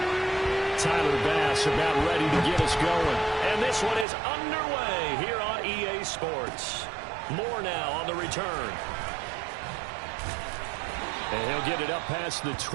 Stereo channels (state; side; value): drops out; left; at 4.0 s